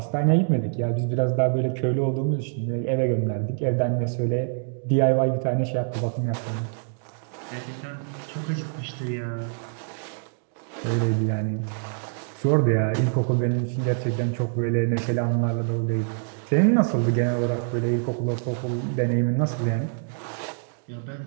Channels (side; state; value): left; silent; digital silence